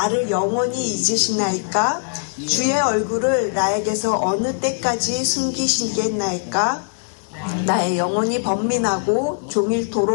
영원히 잊으시나이까? 주의 얼굴을 나에게서 어느 때까지 숨기시겠나이까? 나의 영혼이 번민하고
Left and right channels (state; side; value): silent; right; 65 dB below the other